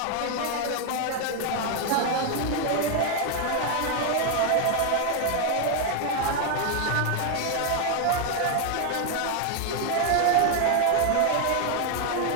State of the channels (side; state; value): both; different; correlation 0.01